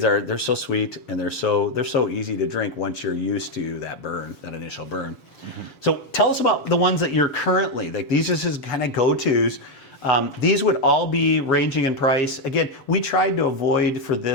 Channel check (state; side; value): late; right; 7.0 ms